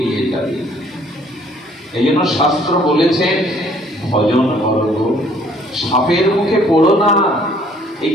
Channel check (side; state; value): both; normal; correlation 0.60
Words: নিয়ে যাবে। এই জন্য শাস্ত্র বলেছেন, ভজন করো, সাপের মুখে পড়ো না। এই